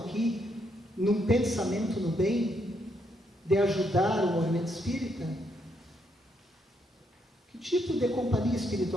num pensamento no bem, de ajudar o movimento espírita, que tipo de companhia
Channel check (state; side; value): normal; both; correlation 0.75